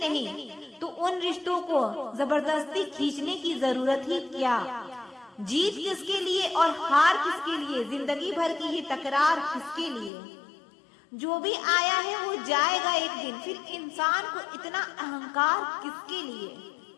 तो उन रिश्तों को जबरदस्ती खींचने की जरूरत ही क्या। जीत किसके लिए और हार किसके लिए, जिंदगी भर की ये तकरार किसके लिए। जो भी आया है वो जाएगा एक दिन, फिर इंसान को इतना अहंकार किसके लिए।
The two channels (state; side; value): drops out; right; at 10.1 s